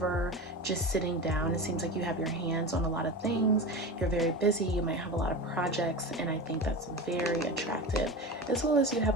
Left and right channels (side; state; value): both; normal; correlation 0.27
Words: just sitting down. It seems like you have your hands on a lot of things. You're very busy. You might have a lot of projects, and I think that's very attractive, as well as you